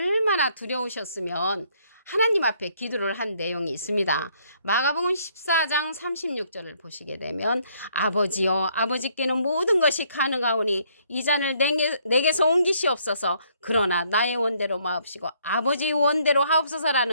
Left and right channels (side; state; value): both; inverted; correlation -0.67